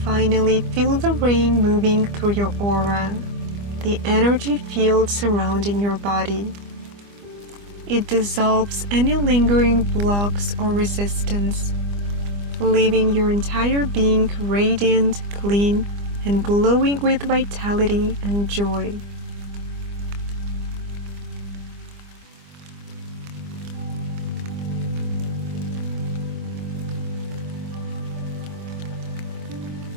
Finally, feel the rain moving through your aura, the energy field surrounding your body. It dissolves any lingering blocks or resistance, leaving your entire being radiant, clean, and glowing with vitality and joy.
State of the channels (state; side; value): late; left; 25 ms